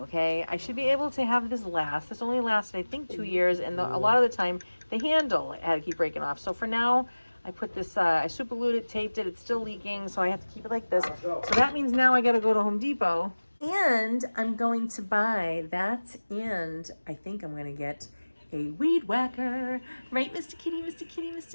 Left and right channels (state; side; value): inverted; both; correlation -1.00